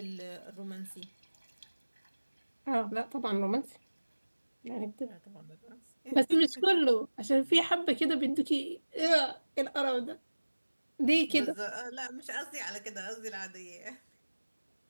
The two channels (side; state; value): both; inverted; correlation -1.00